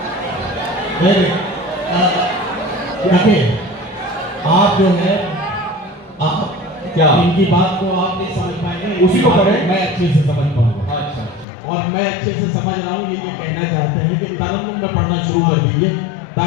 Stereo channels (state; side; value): drops out; right; at 11.5 s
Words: आप जो है आप क्या इनकी बात को आप नहीं समझ पाएंगे, उसी को पढ़ें। मैं अच्छे से समझ पाऊंगा। अच्छा और मैं अच्छे से समझ रहा हूँ ये कहना चाहते हैं कि तरन्नुम में पढ़ना शुरू कर दीजिए